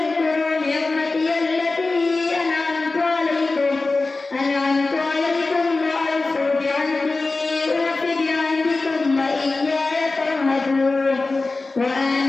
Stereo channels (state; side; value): quieter; right; 3.5 dB